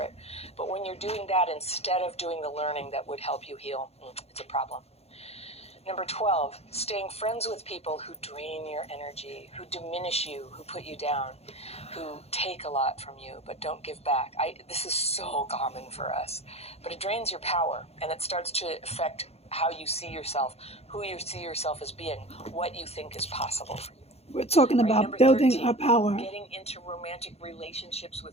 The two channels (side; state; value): right; late; 0.30 ms